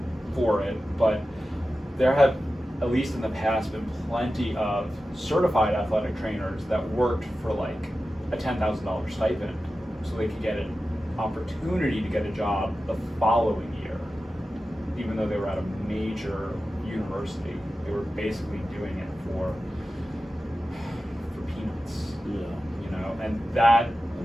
for it. But there have, at least in the past, been plenty of certified athletic trainers that worked for like a $10,000 stipend so they could get an opportunity to get a job the following year, even though they were at a major university. They were basically doing it for peanuts. Yeah. And that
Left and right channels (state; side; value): normal; both; correlation 0.93